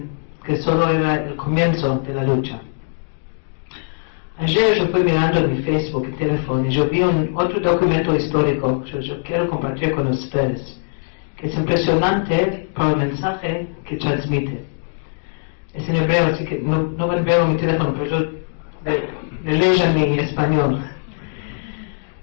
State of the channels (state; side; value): silent; right; digital silence